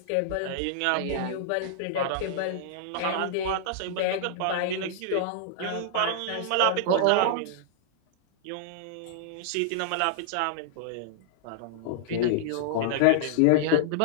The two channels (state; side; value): different; both; correlation -0.01